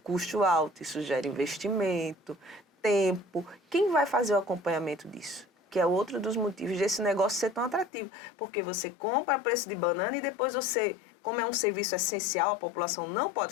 alto, isso gera investimento, tempo. Quem vai fazer o acompanhamento disso? Que é outro dos motivos desse negócio ser tão atrativo. Porque você compra a preço de banana e depois você, como é um serviço essencial, a população não pode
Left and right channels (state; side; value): drops out; right; at 7.9 s